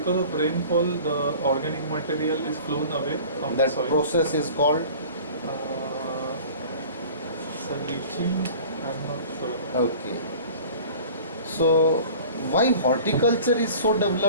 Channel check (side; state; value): both; inverted; correlation -0.43